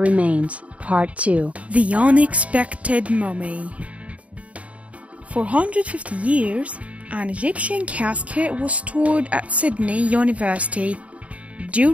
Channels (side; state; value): left; late; 0.066 ms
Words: Remains, Part 2. The Unexpected Mummy. For 150 years, an Egyptian casket was stored at Sydney University.